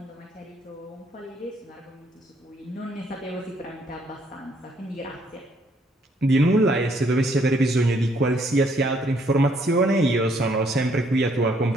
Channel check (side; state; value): both; normal; correlation 0.68